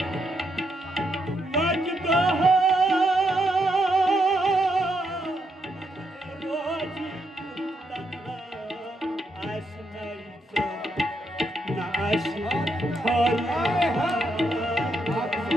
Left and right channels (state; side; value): normal; both; correlation 0.79